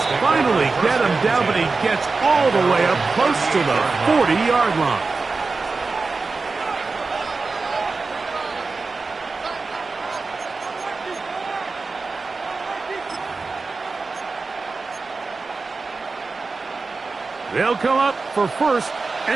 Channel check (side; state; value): left; quieter; 4.0 dB